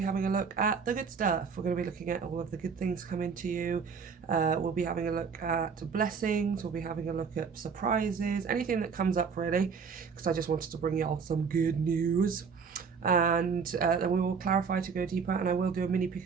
having a look at the good stuff. We're going to be looking at all of the good things coming to you. We'll be having a look at blessings, we'll be having a look at surprises, anything that comes up really, because I just wanted to bring y'all some good news. And then we will clarify to go deeper, and I will do a mini pick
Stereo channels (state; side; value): quieter; left; 5.9 dB